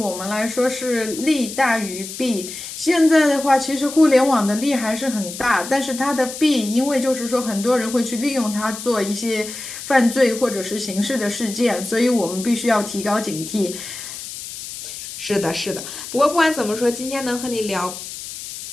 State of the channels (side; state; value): left; noise; hiss, 10 dB below the sound